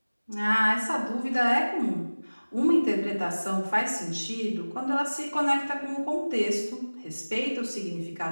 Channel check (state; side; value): inverted; both; correlation -1.00